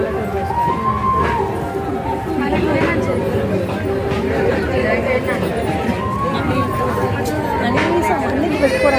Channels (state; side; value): identical; both; correlation 1.00